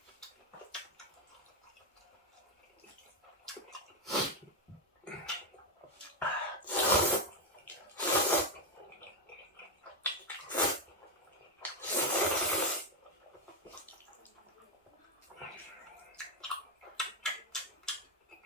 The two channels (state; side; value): normal; both; correlation 0.05